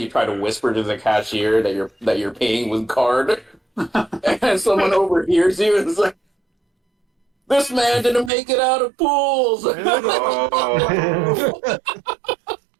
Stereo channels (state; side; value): drops out; left; at 8.3 s